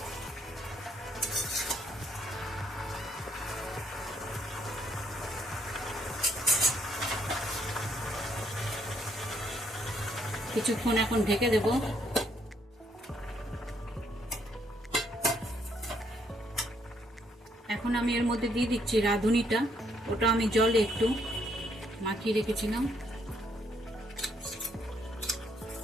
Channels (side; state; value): both; normal; correlation 0.71